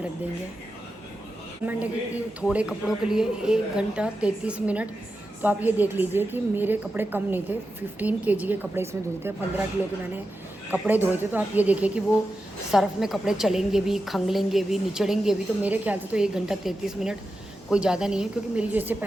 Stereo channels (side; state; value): both; normal; correlation 0.90